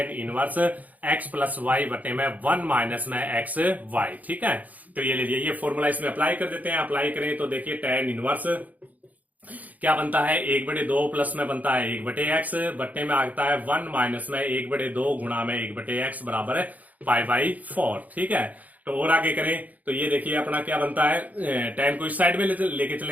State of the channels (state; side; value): late; left; 0.077 ms